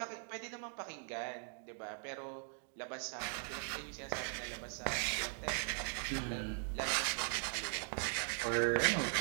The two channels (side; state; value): left; silent; 51 dB below the other